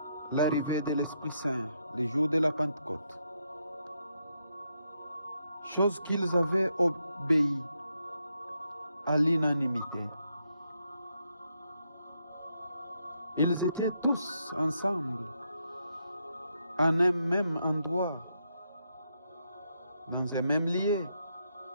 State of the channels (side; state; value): both; inverted; correlation -0.79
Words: l'arrivée de l'Esprit Saint, le jour de la Pentecôte, chose qu'ils avaient obéi à l'unanimité. Ils étaient tous ensemble, en un même endroit, dans un même lieu.